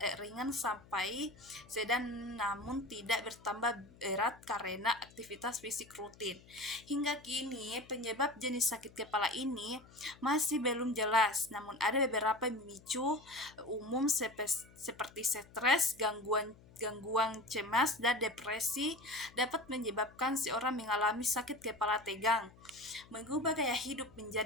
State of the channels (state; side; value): noise; left; hum, 23 dB below the sound